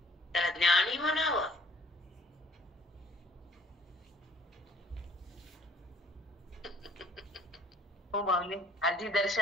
त्याला ज्ञानी म्हणावं. हो माऊली, आधी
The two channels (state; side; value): normal; both; correlation 0.59